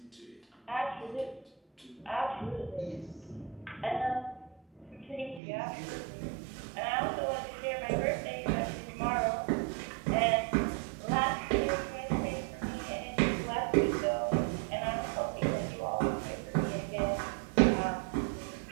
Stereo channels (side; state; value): left; drops out; at 5.4 s